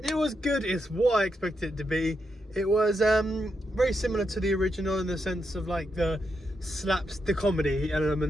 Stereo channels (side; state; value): both; normal; correlation 0.83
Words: It was good, it's what I expected it to be. It was very similar to the original in the sense of like the comedy